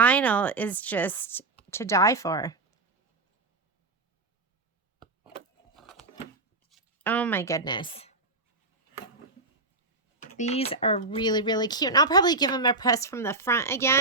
is just to die for. Oh my goodness. These are really, really cute. And I'll probably give them a press from the front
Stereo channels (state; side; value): quieter; left; 3.2 dB